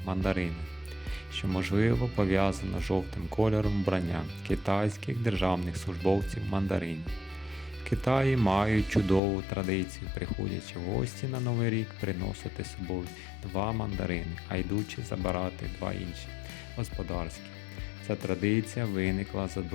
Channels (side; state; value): right; drops out; at 9.2 s